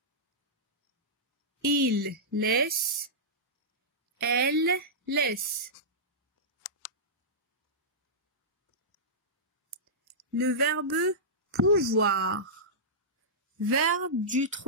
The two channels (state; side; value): normal; both; correlation -0.14